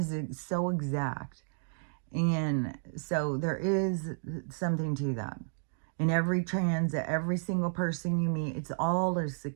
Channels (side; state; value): left; silent; digital silence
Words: so exact. And so there is something to that. In every transit, every single person you meet, it's all this